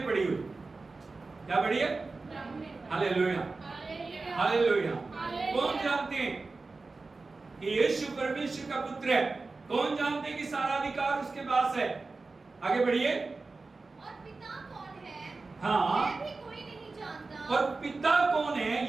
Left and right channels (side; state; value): left; quieter; 3.8 dB